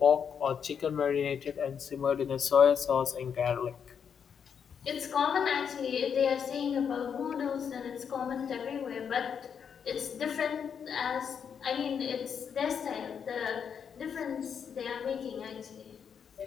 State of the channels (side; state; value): right; quieter; 7.3 dB